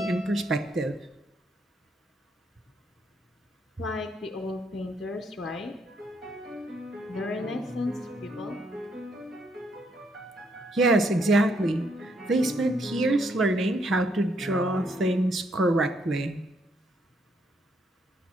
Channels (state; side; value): normal; both; correlation 0.73